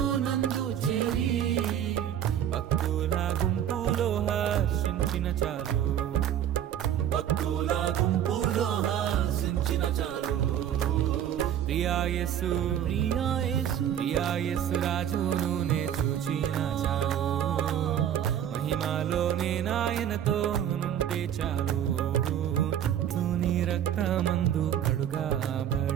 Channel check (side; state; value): left; quieter; 10.1 dB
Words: నందు చేరి, భక్తుల గుంపులో హర్షించిన చాలు, భక్తుల గుంపులో హర్షించిన చాలు. ప్రియా యేసు ప్రియా యేసు ప్రియా యేసు రాజును నే చూచిన చాలు, మహిమలోనే నాయనతో నుంటే చాలు. నీ రక్తమందు